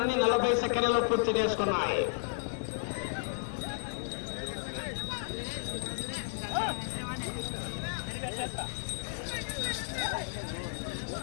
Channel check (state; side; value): silent; right; digital silence